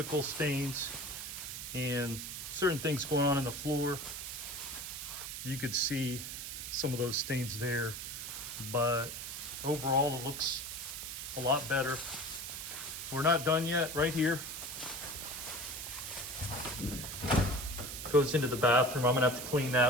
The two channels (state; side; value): noise; right; hiss, 7 dB below the sound